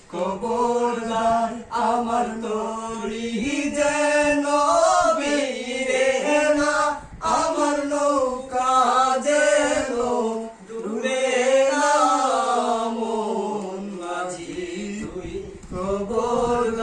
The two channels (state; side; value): identical; both; correlation 1.00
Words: খবরদার, আমার তরি যেন ভিড়ে না, আমার নৌকা যেন ডুবে না। মোহন মাঝি তুই